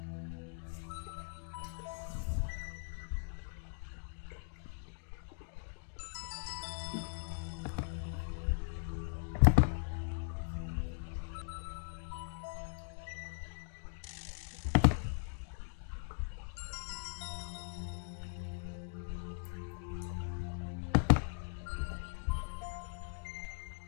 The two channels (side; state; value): right; silent; digital silence